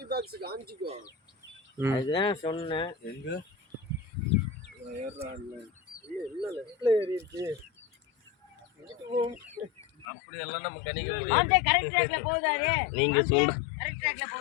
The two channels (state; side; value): drops out; right; at 10.1 s